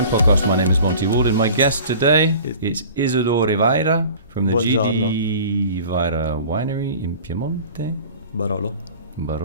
Podcast. My name is Monty Waldin. My guest today is Isidoro Vajra from the GD Vajra winery in Piemonte. Barolo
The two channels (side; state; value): both; inverted; correlation -0.42